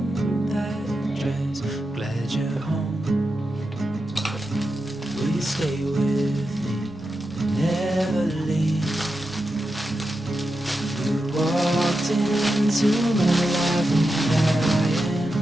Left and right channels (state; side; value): normal; both; correlation 0.89